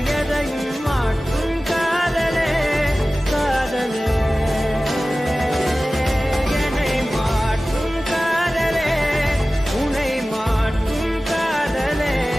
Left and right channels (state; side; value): normal; both; correlation 0.96